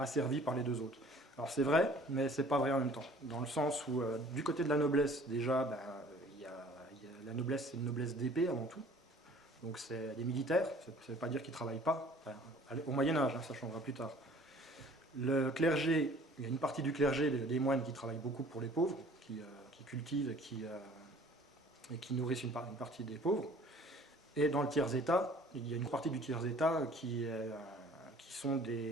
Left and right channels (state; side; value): normal; both; correlation 0.52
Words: par les deux autres. Alors c'est vrai, mais c'est pas vrai en même temps. Dans le sens où, du côté de la noblesse, déjà, la noblesse, c'est une noblesse d'épée avant tout. Donc c'est des militaires, ça ne veut pas dire qu'ils ne travaillent pas. Enfin, au Moyen-Âge, ça changera plus tard. Le clergé, il y a une partie du clergé, des moines qui travaillent beaucoup pour les pauvres, qui cultivent et qui nourrissent une partie des pauvres. Et dans le tiers-état, il y a une partie du tiers-état qui sont